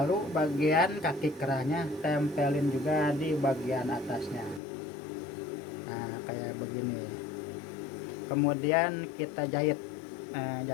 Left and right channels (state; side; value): drops out; right; at 4.6 s